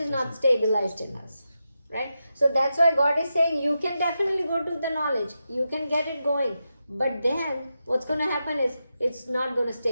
not stabilized in us, right? So that's why God is saying you can definitely go to the knowledge. You can get it going. But then what's going to happen is it's not going to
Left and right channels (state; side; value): inverted; both; correlation -0.88